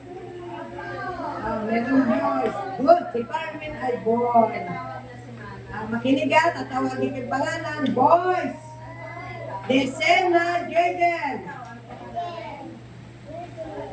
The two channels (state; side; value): identical; both; correlation 1.00